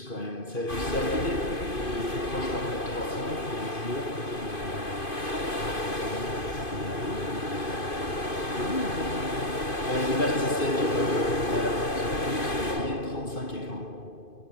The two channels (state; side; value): late; right; 2.5 ms